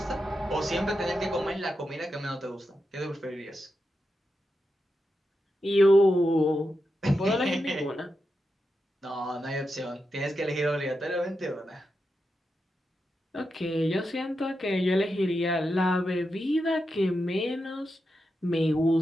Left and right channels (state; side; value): normal; both; correlation 0.88